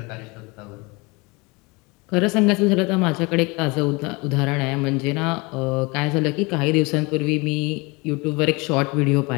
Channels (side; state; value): right; quieter; 26.7 dB